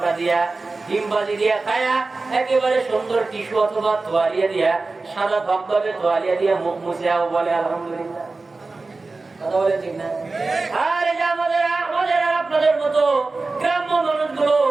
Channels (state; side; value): quieter; left; 3.6 dB